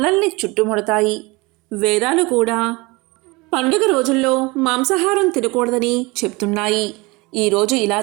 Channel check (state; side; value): quieter; left; 24.5 dB